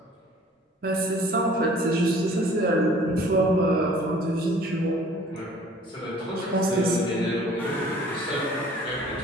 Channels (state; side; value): normal; both; correlation 0.52